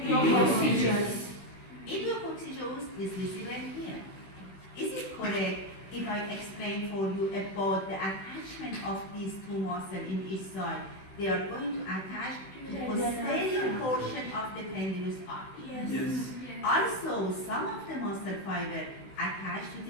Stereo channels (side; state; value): right; late; 16 ms